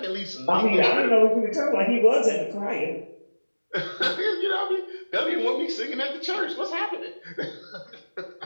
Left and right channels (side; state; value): both; inverted; correlation -1.00